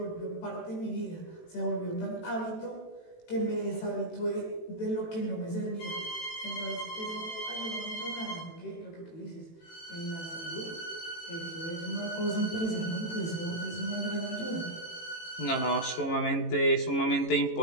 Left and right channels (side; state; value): right; late; 18 ms